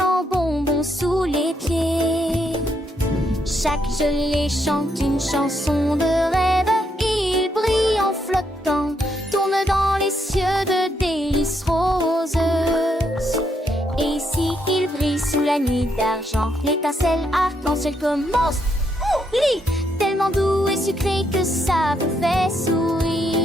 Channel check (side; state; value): both; normal; correlation 0.77